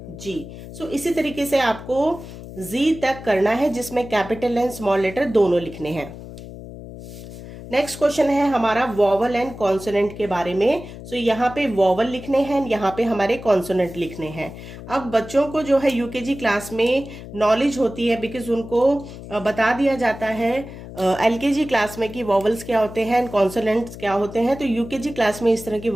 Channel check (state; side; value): noise; left; hum, 13 dB below the sound